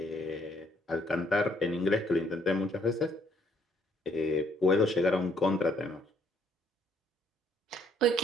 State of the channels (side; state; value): both; normal; correlation 0.67